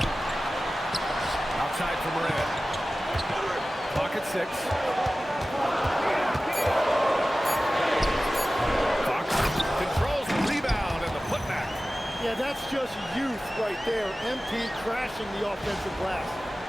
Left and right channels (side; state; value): both; normal; correlation 0.96